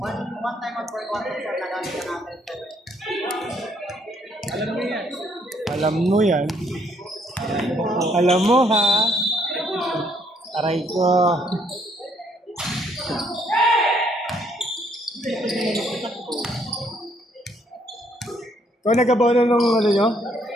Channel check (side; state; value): both; normal; correlation 0.68